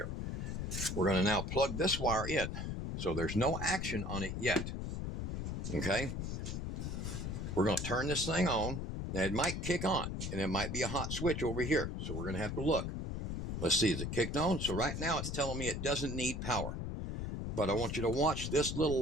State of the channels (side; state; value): left; noise; rumble, 3 dB below the sound